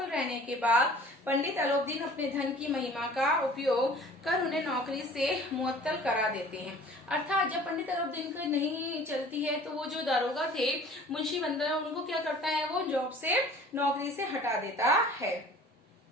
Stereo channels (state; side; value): normal; both; correlation 0.47